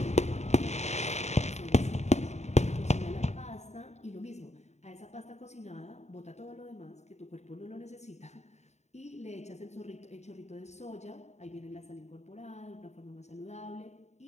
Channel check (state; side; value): late; right; 0.32 ms